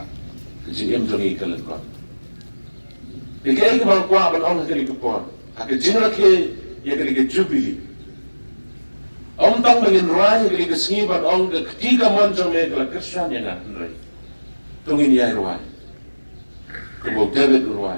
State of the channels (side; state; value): both; inverted; correlation -1.00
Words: kejim jongi kalen kon dikay ke bang kwa ban ong kali ke por ak jinra ke ye kali ke jubili om tang mengin rai kali ke singi ban ong ke ketiga monjong me kala krisyan ya na nrai tungin ya rai ke bo David